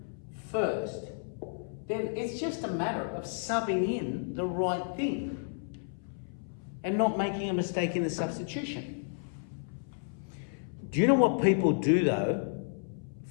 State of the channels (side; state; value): right; silent; 56 dB below the other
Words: first, then it's just a matter of subbing in the right thing and not making a mistake in the substitution. Do you know what people do though